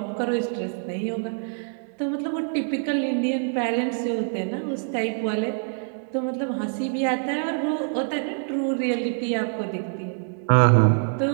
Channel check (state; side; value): silent; left; 62 dB below the other